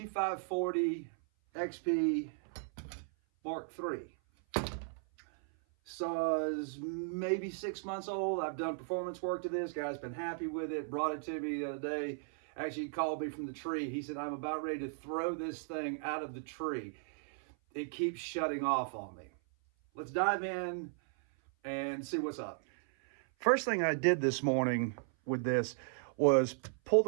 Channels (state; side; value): silent; left; 54 dB below the other